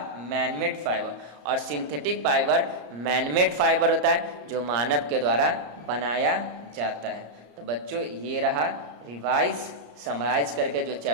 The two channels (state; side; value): late; left; 34 ms